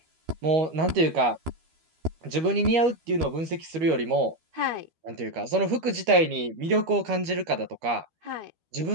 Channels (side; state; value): left; late; 12 ms